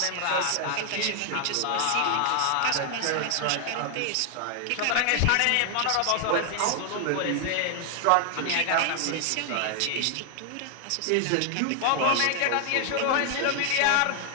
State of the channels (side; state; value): both; different; correlation 0.00